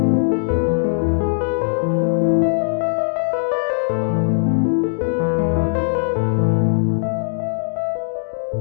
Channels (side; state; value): right; silent; digital silence